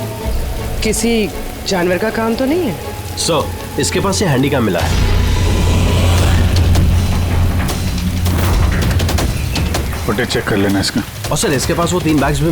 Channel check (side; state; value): both; identical; correlation 1.00